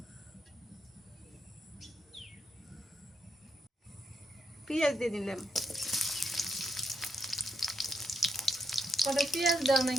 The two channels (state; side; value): normal; both; correlation 0.79